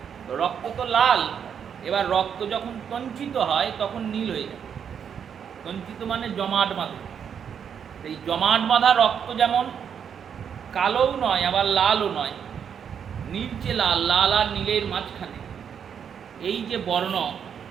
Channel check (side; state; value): left; quieter; 7.8 dB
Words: রক্ত তো লাল, এবার রক্ত যখন তঞ্চিত হয় তখন নীল হয়ে যায়। তঞ্চিত মানে জমাট বাঁধা। এই জমাট বাঁধা রক্ত যেমন কালোও নয় আবার লালও নয়, নীলচে লাল, লাল আর নীলের মাঝখানে এই যে বর্ণ,